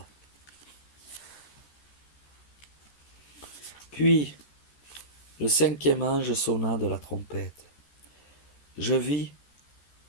Puis le 5e ange sonna de la trompette. je vis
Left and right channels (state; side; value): late; right; 14 ms